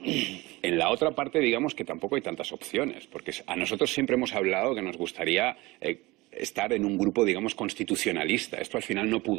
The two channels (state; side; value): quieter; left; 21.5 dB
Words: En la otra parte, digamos que tampoco hay tantas opciones, porque a nosotros siempre hemos hablado que nos gustaría estar en un grupo, digamos, constitucionalista. Esto al final no